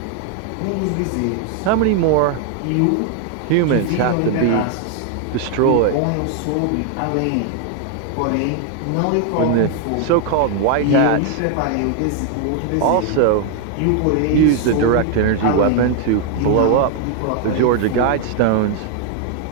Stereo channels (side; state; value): both; different; correlation 0.00